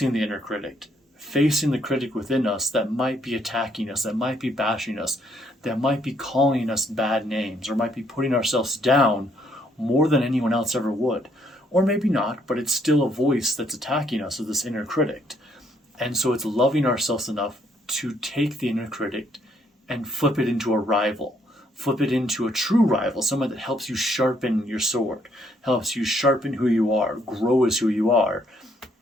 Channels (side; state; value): both; normal; correlation 0.69